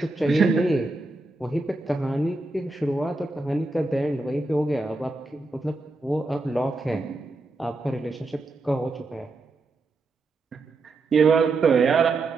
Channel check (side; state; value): left; quieter; 3.3 dB